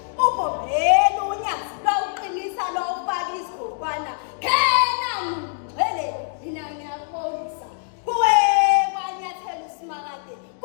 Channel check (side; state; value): right; silent; digital silence